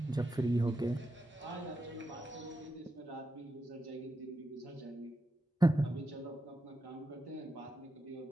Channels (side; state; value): both; normal; correlation 0.87